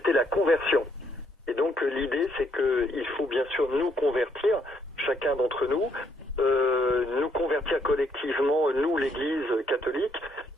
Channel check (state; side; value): normal; both; correlation 0.71